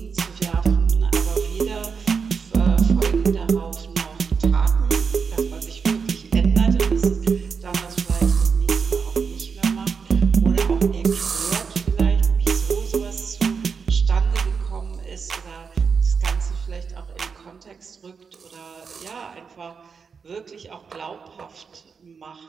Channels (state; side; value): quieter; left; 5.7 dB